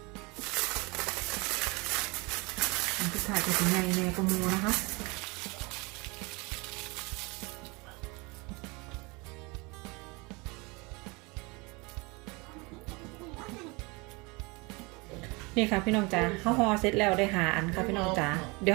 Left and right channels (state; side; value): quieter; left; 27.0 dB